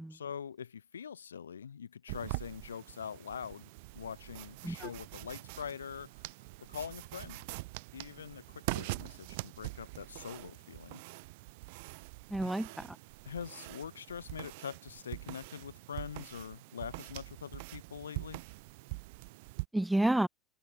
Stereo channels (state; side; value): normal; both; correlation 0.35